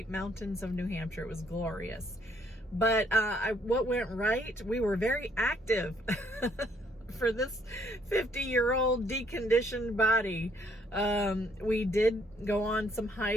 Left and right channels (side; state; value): both; normal; correlation 0.67